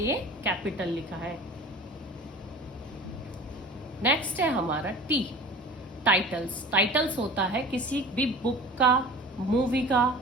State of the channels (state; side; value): normal; both; correlation 0.39